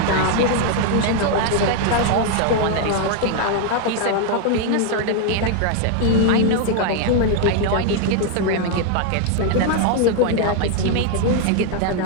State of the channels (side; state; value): both; different; correlation 0.00